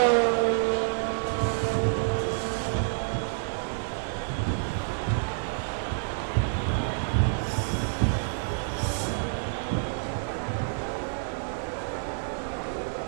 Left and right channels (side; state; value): left; silent; digital silence